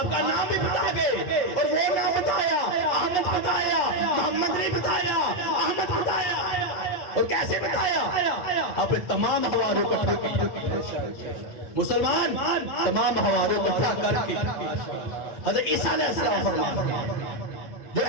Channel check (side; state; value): right; late; 8.7 ms